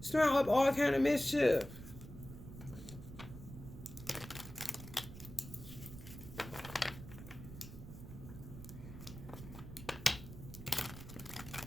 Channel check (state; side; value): noise; right; rumble, 12 dB below the sound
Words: up all kind of mischief.